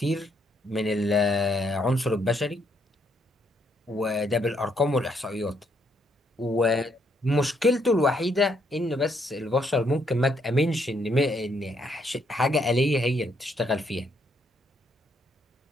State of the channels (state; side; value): normal; both; correlation 0.73